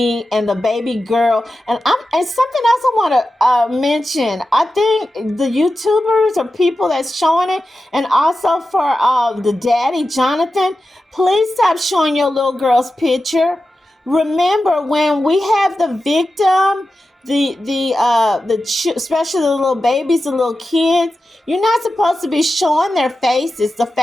and the baby girl, and something else I want to mention. I think the YouTubers or people that's showing it, and also for the daddy Jonathan, please stop showing your little girl's picture. Remember, when we have the victim, especially the little babies, the little kids, you're not supposed to be showing their faces. The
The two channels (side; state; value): both; normal; correlation 0.92